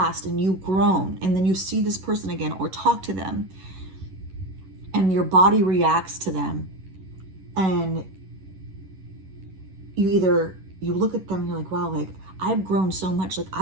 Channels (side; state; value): left; late; 11 ms